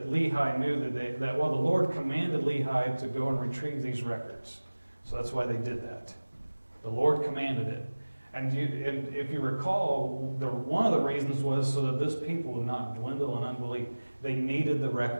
Lehi knew that the Lord commanded Lehi to go and retrieve these records. So that's why they did that. The Lord commanded it. And if you recall, one of the reasons was so that this people would not dwindle in unbelief. They needed the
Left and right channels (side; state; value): both; inverted; correlation -1.00